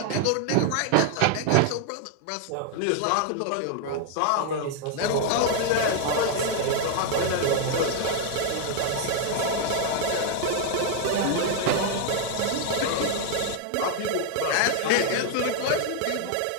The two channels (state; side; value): different; both; correlation 0.00